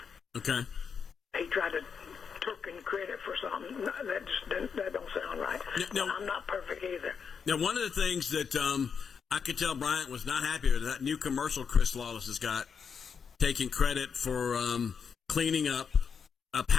Okay. He tried to tooken credit for something. That don't sound right. No. I'm not perfect either. Now, one of the things that I could tell Bryant was not happy with, that new commercial Chris Lawless has got, taking credit for cleaning up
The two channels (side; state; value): right; quieter; 6.4 dB